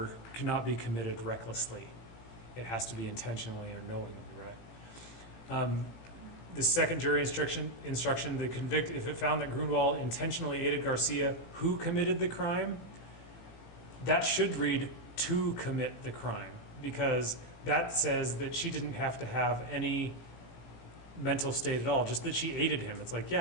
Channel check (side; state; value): right; late; 18 ms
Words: cannot be committed recklessly. It has to be intentionally or knowingly, right? The second jury instruction, the convict, if it found that Grunwald intentionally aided Garcia, who committed the crime, that should read to commit the crime, because that says that she didn't have to have any mental state at all, just that she aided him. It's like,